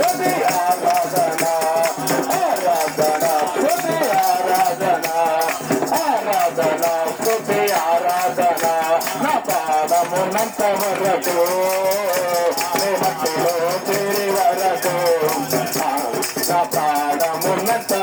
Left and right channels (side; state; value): both; identical; correlation 1.00